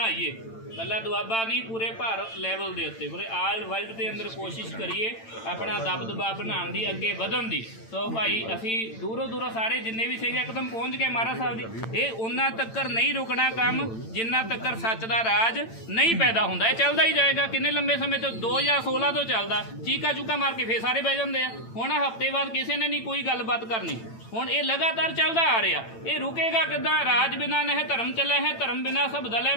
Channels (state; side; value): late; right; 8.9 ms